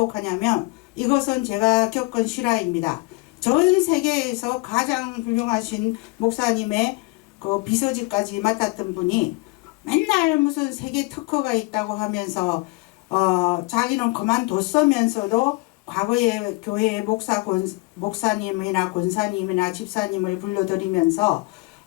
이것은 제가 겪은 실화입니다. 전 세계에서 가장 훌륭하신 목사님의 그 비서직까지 맡았던 분이 맨날 무슨 세계 특허가 있다고 하면서 자기는 그만뒀으면서도 과거에 교회의 목사님이나 권사님이나 집사님을 불러들이면서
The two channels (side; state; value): right; quieter; 24.5 dB